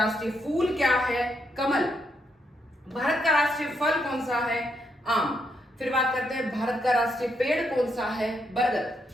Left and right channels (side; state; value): both; normal; correlation 0.77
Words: फूल क्या है? कमल। भारत का राष्ट्रीय फल कौन सा है? आम। फिर बात करते हैं भारत का राष्ट्रीय पेड़ कौन सा है?